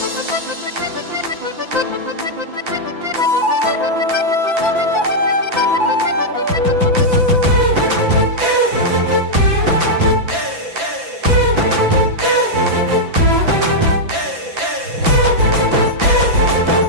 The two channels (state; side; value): late; left; 5.9 ms